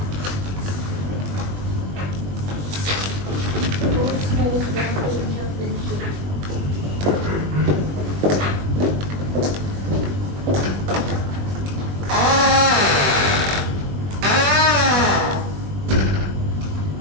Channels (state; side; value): late; left; 21 ms